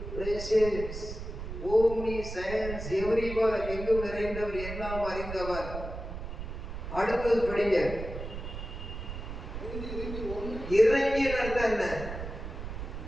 omniscience, everywhere, எங்கும் நிறைந்தவர், எல்லாம் அறிந்தவர். அடுத்தது படிங்க. இறங்கி அர்த்தம் என்ன?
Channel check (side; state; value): right; noise; rumble, 8 dB below the sound